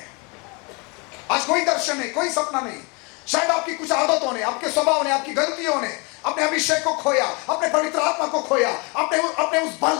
आज कोई दर्शन नहीं, कोई सपना नहीं। शायद आपकी कुछ आदतों ने, आपके स्वभाव ने, आपकी गलतियों ने अपने अभिषेक को खोया, अपने पवित्र आत्मा को खोया, अपने उस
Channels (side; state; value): right; quieter; 30.4 dB